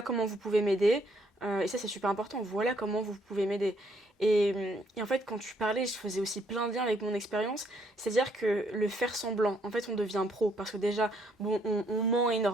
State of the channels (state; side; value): normal; both; correlation 0.69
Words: comment vous pouvez m'aider. Et ça, c'est super important, voilà comment vous pouvez m'aider. Et en fait, quand tu parlais, je faisais aussi plein de liens avec mon expérience. C'est-à-dire que le faire semblant, en fait, on devient pro. Parce que déjà, bon, on ment